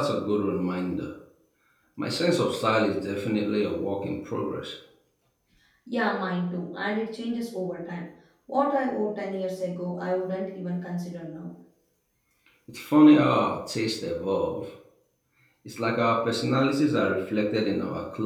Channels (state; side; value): identical; both; correlation 1.00